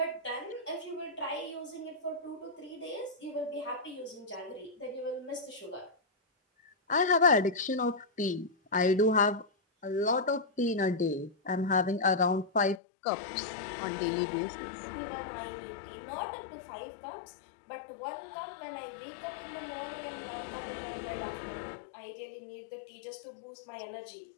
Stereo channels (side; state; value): right; drops out; at 12.8 s